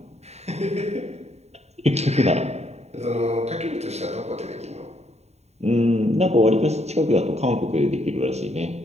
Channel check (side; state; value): left; late; 0.32 ms